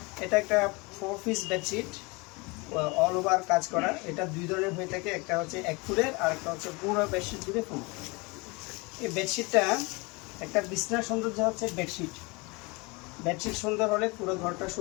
এটা একটা 4 পিস বেডশিট, অল ওভার কাজ করা। এটা দুই ধরনের হয়ে থাকে, একটা হচ্ছে 1 ফুটের আর একটা হচ্ছে পুরো বেডশিট জুড়ে ফুল। এই বেডশিটটা একটা বিছনার সৌন্দর্য হচ্ছে বেডশিট। বেডশিট সুন্দর হলে পুরো ঘরটা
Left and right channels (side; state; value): right; quieter; 26.8 dB